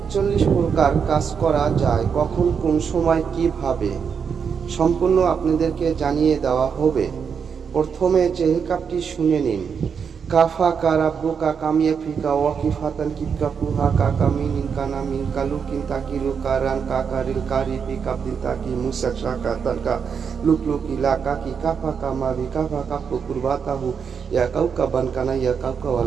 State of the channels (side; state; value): left; quieter; 6.6 dB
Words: প্রকার কাজ করা যায়, কখন, কোন সময়, কিভাবে, সম্পূর্ণ আপনাদেরকে জানিয়ে দেওয়া হবে। প্রথমে চেহেল কাপটি শুনে নিন। কাফা কারাব্বুকা কামিয়া ফিকা ওয়াকিফাতান কিবকা পুহা কাকা মিনিন কানা মিন কালুকিন তাকিলু কারান কাকারিল কারিবি কাবদিন তাকি মুসাক শাকা তাকা লুকলুকি লাকাকি কাফা কামাবি কাফা কাপু কুরবাতাহু ইয়া কাউকা বানকানা ইয়া কাউকা